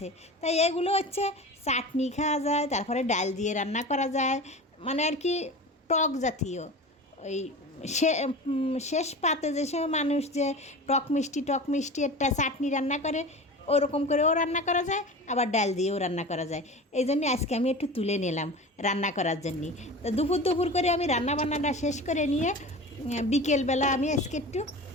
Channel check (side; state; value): both; normal; correlation 0.33